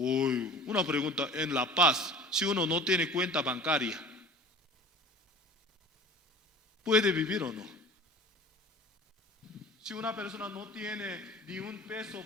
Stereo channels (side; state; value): both; normal; correlation 0.41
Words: una pregunta: en La Paz, si uno no tiene cuenta bancaria, ¿puede vivir o no? Si una persona no tiene ni un peso